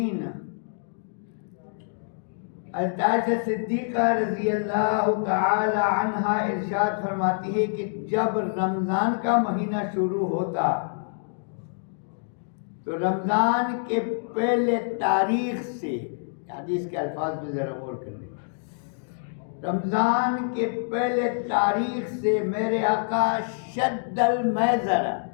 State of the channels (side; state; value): right; silent; digital silence